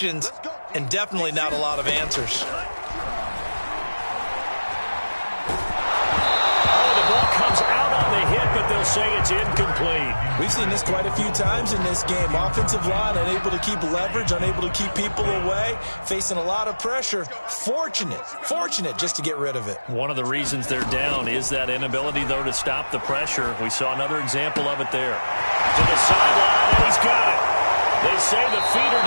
and definitely not a lot of answers. Oh, the ball comes out on the hit, but they'll say it's incomplete. We've seen this quite a few times in this game. Offensive line unable to keep leverage, unable to keep people away, facing a lot of pressure. Fortunate just to get rid of it. One of the reasons they're down is that inability, though, to stop the pressure. We saw another example of it there. To the sideline, and he's got it. They say the feet are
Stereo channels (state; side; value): inverted; both; correlation -1.00